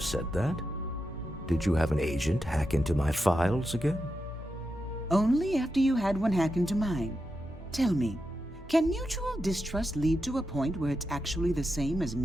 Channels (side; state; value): both; normal; correlation 0.88